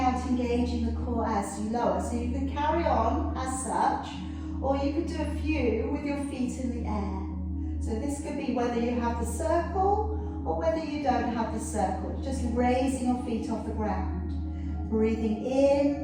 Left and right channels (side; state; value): both; identical; correlation 1.00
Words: engaging the core as you lower. So you can carry on as such, or you could do a few with your feet in the air. So this could be whether you have the circle or whether you don't have the circle, just raising your feet off the ground. Breathing